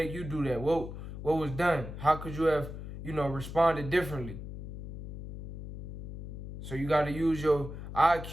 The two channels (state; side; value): noise; left; hum, 9 dB below the sound